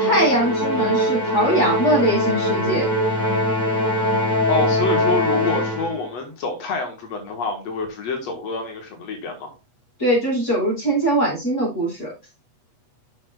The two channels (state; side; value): late; right; 8.3 ms